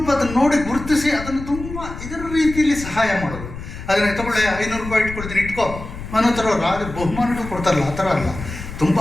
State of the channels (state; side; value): noise; left; rumble, 10 dB below the sound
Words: ಅದನ್ನು ನೋಡಿ ಗುರುತಿಸಿ ಅದನ್ನು ತುಂಬ ಇದರ ರೀತಿಯಲ್ಲಿ ಸಹಾಯ ಮಾಡೋದು. ಅದನ್ನು ತಗೊಳ್ಳಿ 500 ರೂಪಾಯಿ ಇಟ್ಕೊಳ್ತೀನಿ ಇಟ್ಕೋ ಅನ್ನೋ ಥರ ಬಹುಮಾನಗಳು ಕೊಡ್ತಾರಲ್ಲ, ಆ ಥರ ಅಲ್ಲ. ತುಂಬ